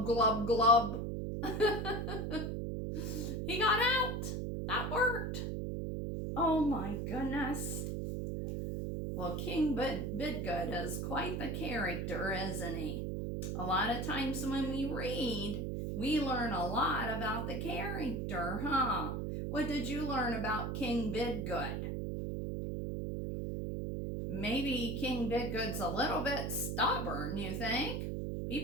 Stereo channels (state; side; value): noise; right; hum, 2 dB below the sound